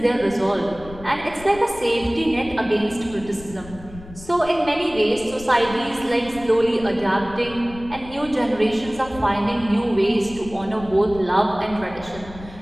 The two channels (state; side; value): noise; left; rumble, 17 dB below the sound